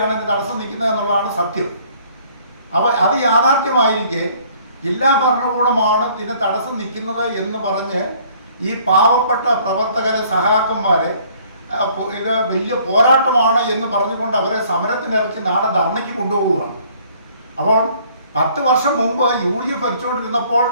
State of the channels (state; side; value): inverted; both; correlation -0.59